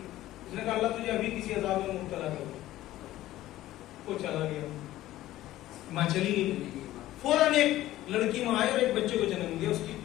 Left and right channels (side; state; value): right; quieter; 15.1 dB